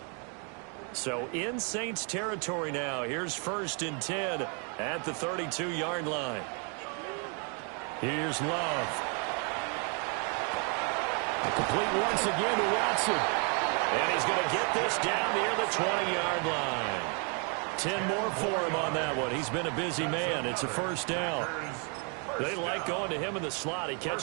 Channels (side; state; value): left; quieter; 38.0 dB